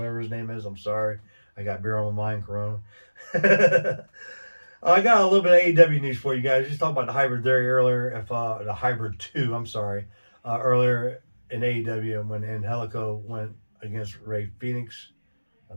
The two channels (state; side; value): inverted; both; correlation -1.00